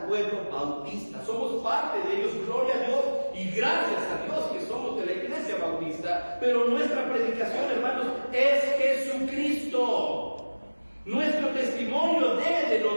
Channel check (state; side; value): inverted; both; correlation -1.00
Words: pueblo bautista. Somos parte de ellos, gloria a Dios, y gracias a Dios que somos de la iglesia bautista. Pero nuestra predicación, hermanos, es Jesucristo. Nuestro testimonio debe